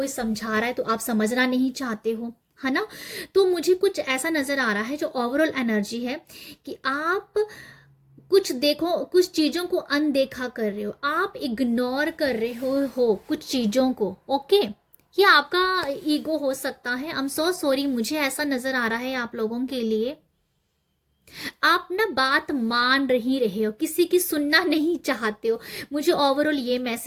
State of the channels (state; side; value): identical; both; correlation 1.00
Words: समझा रहा है तो आप समझना नहीं चाहते हो, है ना। तो मुझे कुछ ऐसा नज़र आ रहा है जो ओवरऑल एनर्जी है कि आप कुछ देखो, कुछ चीज़ों को अनदेखा कर रहे हो, आप इग्नोर कर रहे हो कुछ चीज़ों को। ओके, ये आपका ईगो हो सकता है। आई एम सो सॉरी, मुझे ऐसा नज़र आ रहा है आप लोगों के लिए। आप ना बात मान ही रहे हो, किसी की सुनना नहीं चाहते हो। मुझे ओवरऑल ये